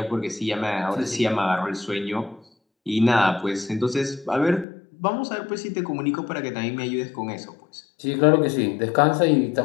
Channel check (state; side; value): drops out; right; at 4.7 s